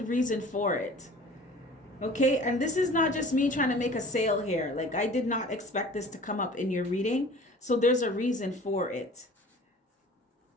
reason for it. Okay, and this is not just me trying to make a sale here. Like, I did not expect this to come up in your reading, so there's a reason for it.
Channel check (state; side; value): normal; both; correlation 0.45